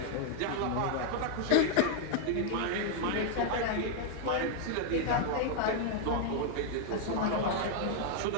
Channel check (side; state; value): both; different; correlation 0.00